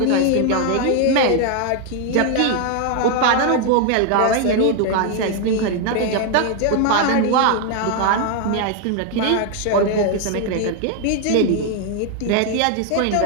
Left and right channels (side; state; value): both; different; correlation 0.00